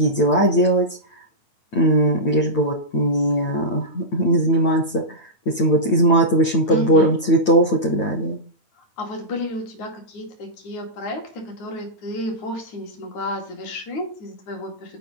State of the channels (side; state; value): right; late; 9.0 ms